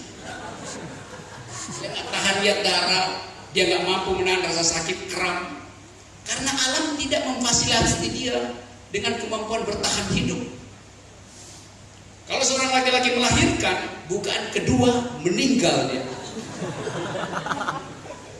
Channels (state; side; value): identical; both; correlation 1.00